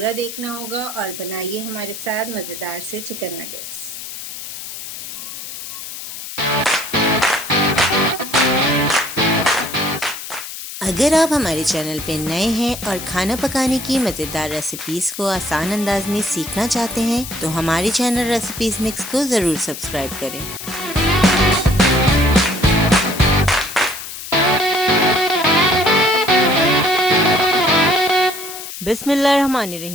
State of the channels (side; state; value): left; noise; hiss, 10 dB below the sound